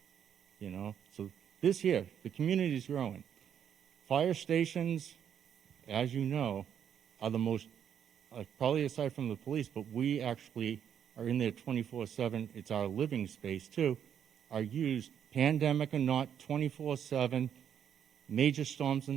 you know. So this here, the community's growing. Fire stations, as you know, are the most, probably aside from the police, but we actually are in there 24/7. It's our living space too. Are used, pandemic or not, 24/7. Major storms or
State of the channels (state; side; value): quieter; left; 8.8 dB